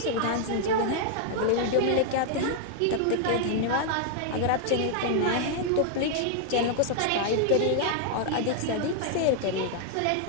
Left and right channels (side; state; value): both; different; correlation 0.00